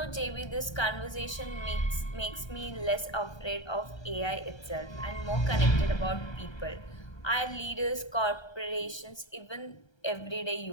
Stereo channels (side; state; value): right; late; 1.3 ms